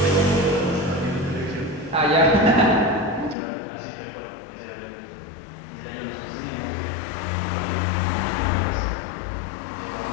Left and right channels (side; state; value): right; drops out; at 3.4 s